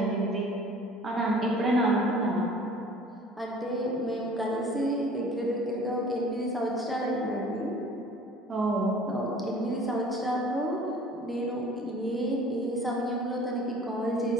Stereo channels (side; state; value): both; normal; correlation 0.48